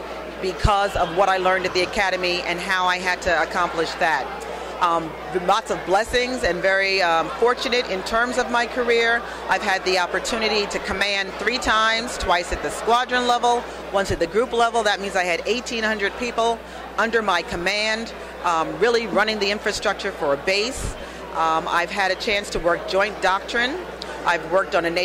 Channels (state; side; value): identical; both; correlation 1.00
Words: because of what I learned at the Academy and how I had to accomplish that. Lots of blessings and very fortunate in terms of my career. I've had the opportunity to command 3 times, twice at the squadron level, once at the group level. That means I had 1,800 people under my command, really running the infrastructure for a base. I've had a chance to work joint doctrine. I've worked on a